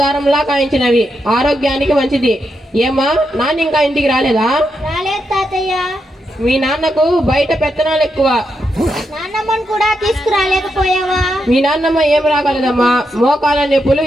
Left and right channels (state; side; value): normal; both; correlation 0.83